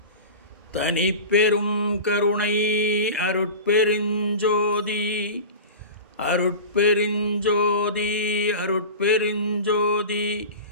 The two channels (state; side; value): inverted; both; correlation -0.31